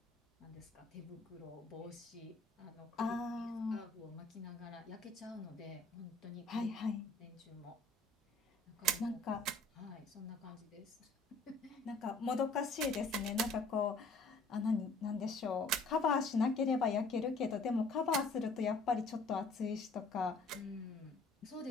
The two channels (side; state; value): right; quieter; 3.2 dB